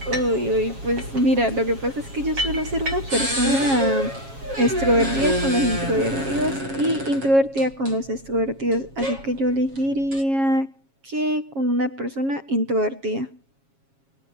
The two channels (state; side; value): late; left; 7.3 ms